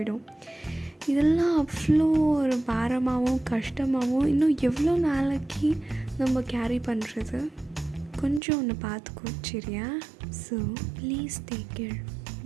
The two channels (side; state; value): left; drops out; at 8.4 s